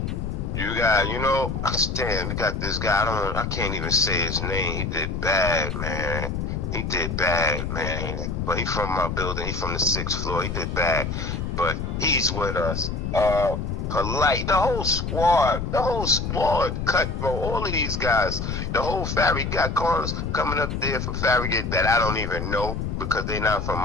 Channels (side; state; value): left; noise; rumble, 3 dB below the sound